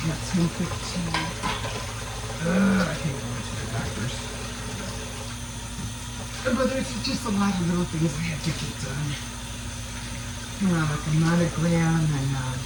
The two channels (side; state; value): both; identical; correlation 1.00